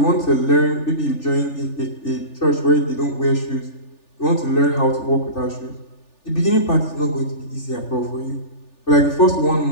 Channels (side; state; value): right; late; 3.4 ms